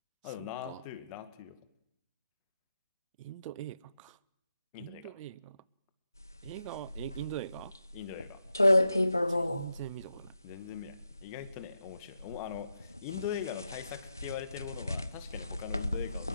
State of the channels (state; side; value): inverted; both; correlation -0.86